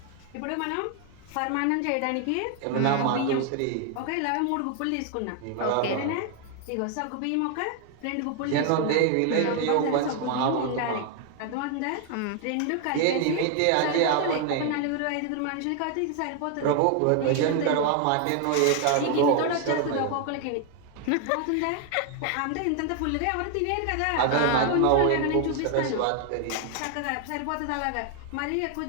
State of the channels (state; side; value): different; both; correlation 0.00